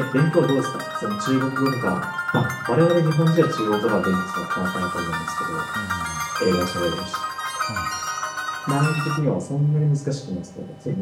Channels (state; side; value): identical; both; correlation 1.00